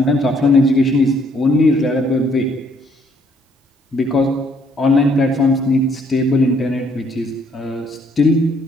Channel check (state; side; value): normal; both; correlation 0.66